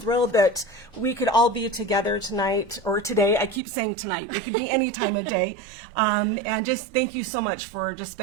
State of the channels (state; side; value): drops out; left; at 3.6 s